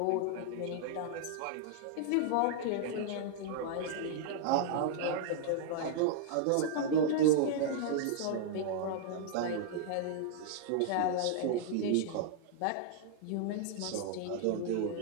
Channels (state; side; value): different; both; correlation -0.01